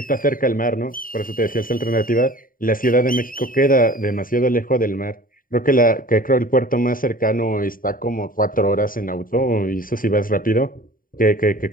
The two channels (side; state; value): right; late; 0.41 ms